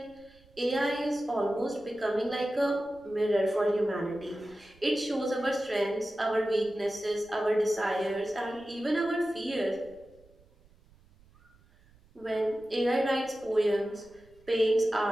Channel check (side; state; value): right; noise; rumble, 29 dB below the sound